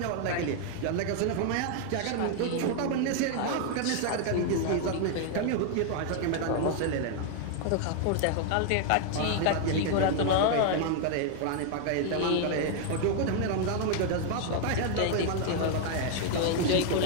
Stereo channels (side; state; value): both; different; correlation 0.00